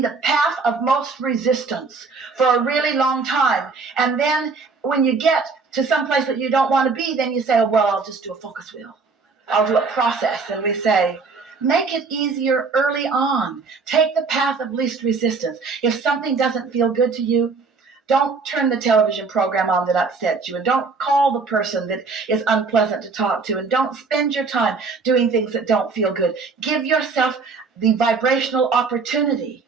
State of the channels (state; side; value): quieter; left; 4.6 dB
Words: the path of most resistance for a really long time. And then when you get to some place that you don't want to be, then you say, oh, well, I'll just do a focus wheel. I'll do a process. And we say, make it easier early on. Take the path of least resistance. If something doesn't feel good to you, Don't turn the television program on that upsets you, and don't call the person that is unpleasant to talk to, and don't spend your time doing things that don't feel good. Give yourself the vibrational opportunity